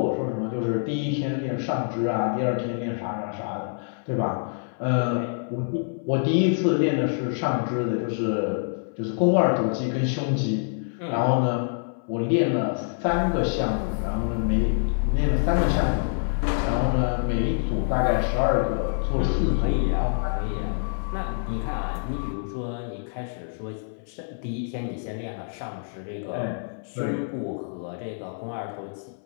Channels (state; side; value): silent; right; 61 dB below the other